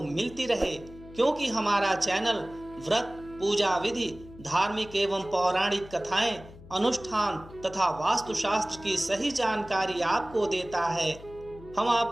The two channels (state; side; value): noise; left; hum, 18 dB below the sound